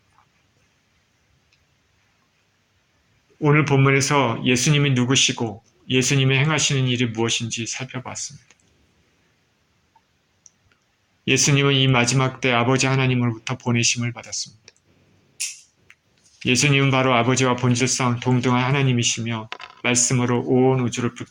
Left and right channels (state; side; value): identical; both; correlation 1.00